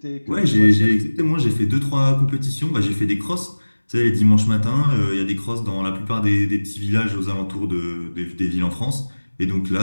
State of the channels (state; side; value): inverted; both; correlation -1.00